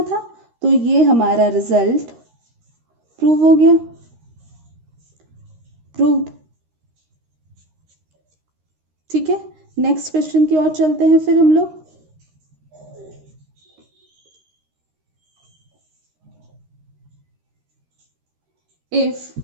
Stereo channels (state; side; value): late; left; 13 ms